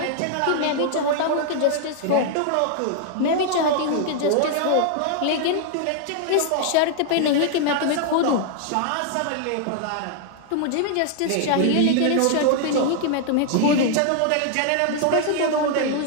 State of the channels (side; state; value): both; different; correlation 0.00